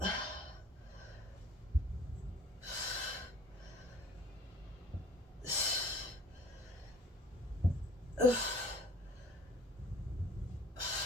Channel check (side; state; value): both; normal; correlation 0.52